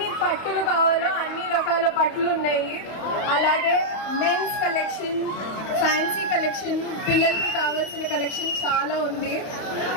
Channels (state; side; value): late; right; 32 ms